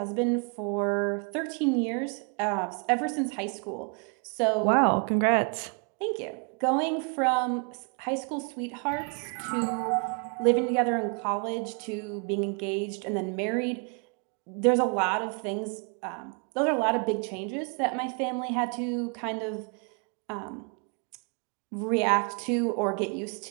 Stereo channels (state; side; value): quieter; left; 36.8 dB